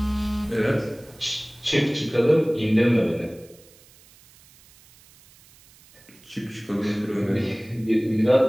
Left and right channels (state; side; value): noise; right; hiss, 26 dB below the sound